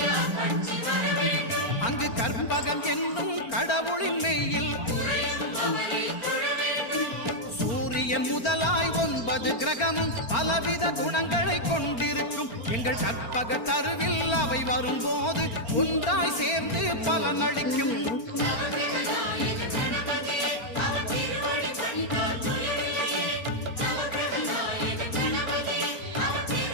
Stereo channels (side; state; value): right; late; 4.4 ms